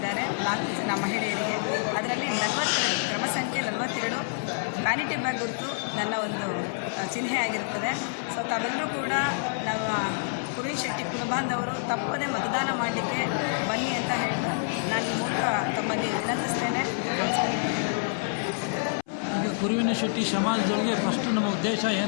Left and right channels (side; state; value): right; silent; 60 dB below the other